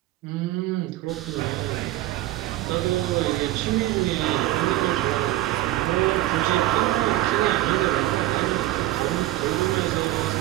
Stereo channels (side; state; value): left; quieter; 16.0 dB